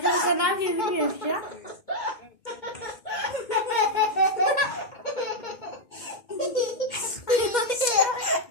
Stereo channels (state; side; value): late; right; 2.1 ms